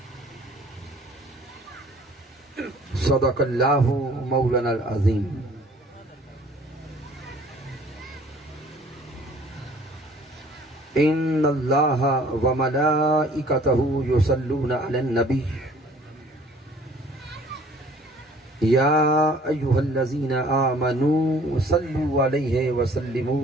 صدق اللہ مولانا العظیم. ان اللہ وملائکتہ یصلون علی النبی یا ایہا الذین آمنوا صلوا علیہ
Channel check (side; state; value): both; normal; correlation 0.54